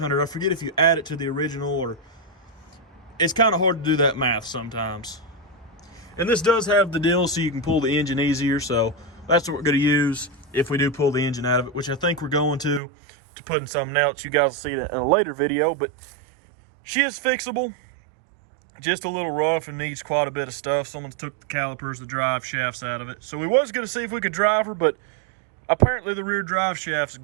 I forget if you add it to the original, or it's kind of hard to do that math sometimes. And this does have the deal so you can pull the engine easier. So that's what we're going to use if we do pull the engine out of it, which I think we're going to put in something else. You guys will see it in a later video, but she is fixable. Just a little rough and needs quite a bit of stuff. Someone took the calipers, the drive shafts out of it. So we was going to see if we could drive her, but apparently the rear drive shaft's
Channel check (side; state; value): left; drops out; at 12.8 s